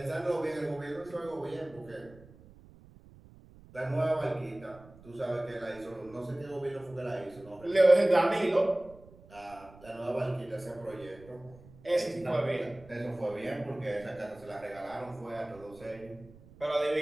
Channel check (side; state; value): right; noise; rumble, 22 dB below the sound